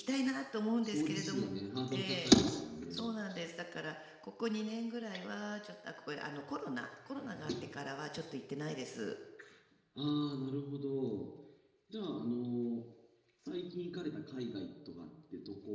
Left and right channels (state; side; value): identical; both; correlation 1.00